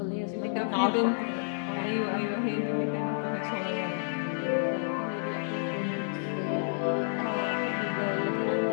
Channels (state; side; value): silent; right; digital silence